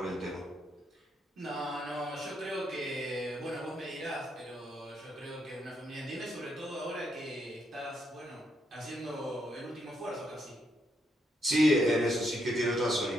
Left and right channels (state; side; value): normal; both; correlation 0.77